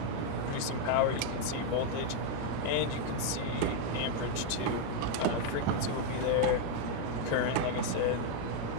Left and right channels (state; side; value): different; both; correlation 0.00